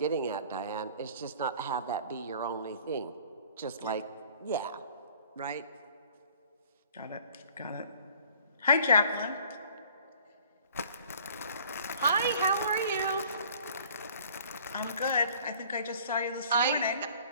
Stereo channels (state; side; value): inverted; both; correlation -0.52